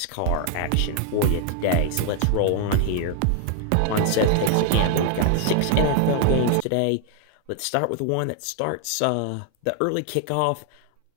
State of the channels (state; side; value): different; both; correlation 0.00